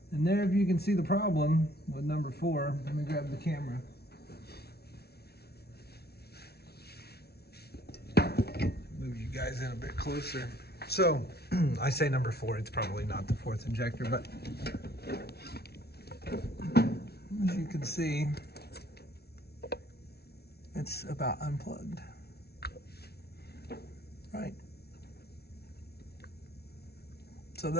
And there, if you can see the problem with number 4, let me grab the camera. Move you guys in a bit closer. So, I say number 4, it's probably not the 4th injector, but as you can see, it's about unplugged. Right? So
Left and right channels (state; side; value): late; right; 0.46 ms